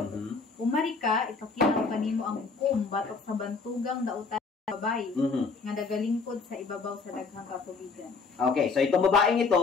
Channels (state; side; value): quieter; right; 4.6 dB